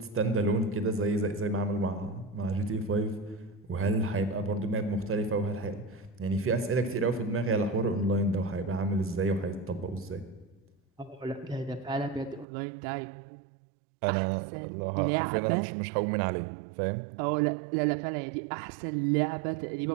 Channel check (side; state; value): left; drops out; at 12.5 s